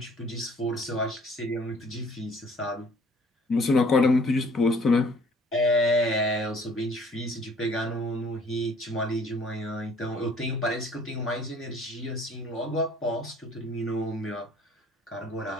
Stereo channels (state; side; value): normal; both; correlation 0.56